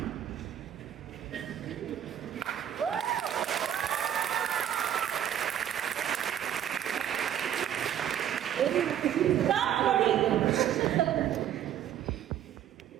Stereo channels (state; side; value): quieter; left; 10.3 dB